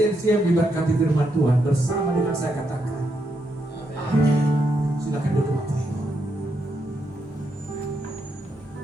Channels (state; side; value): normal; both; correlation 0.80